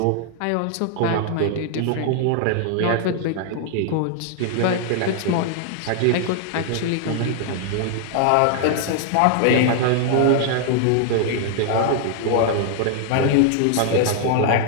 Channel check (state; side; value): different; both; correlation -0.01